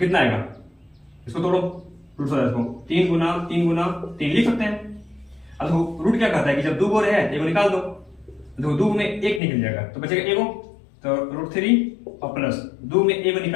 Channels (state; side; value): drops out; right; at 9.4 s